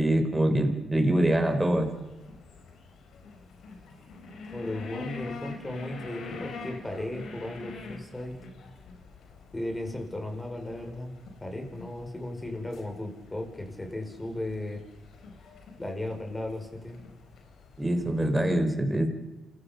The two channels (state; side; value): normal; both; correlation 0.91